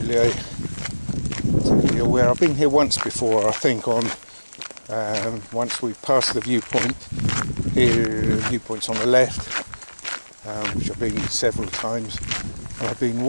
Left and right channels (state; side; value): inverted; both; correlation -1.00